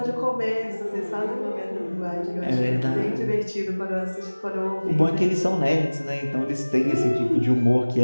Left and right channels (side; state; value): both; inverted; correlation -1.00